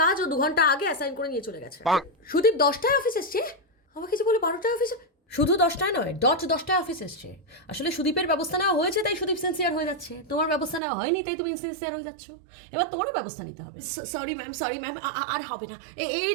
কাজ ও 2 ঘন্টা আগে অ্যাসাইন করে নিয়ে চলে গেছে। সুদীপ 10টায় অফিস এসছে? আমাকে যে বলে 12টায় অফিসে। শুধু 10টায় নয়, 10টায় অফিস এসছে। আসলে সুদীপের ব্যবস্থা নেওয়া হয়েছে তাই সুদীপ সিনসিয়ার হয়ে যাচ্ছে। তোমার ব্যবস্থা নেওয়া হয়নি তাই তুমি ইনসিনসিয়ার হয়ে যাচ্ছ। এবার তোমারও ব্যবস্থা নিতে হবে। সরি ম্যাম, আর হবে না, এই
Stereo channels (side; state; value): left; drops out; at 10.8 s